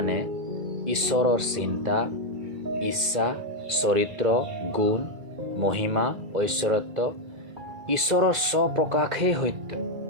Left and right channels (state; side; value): late; left; 2.3 ms